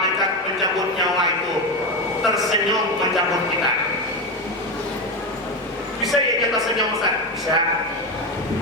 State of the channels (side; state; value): both; normal; correlation 0.14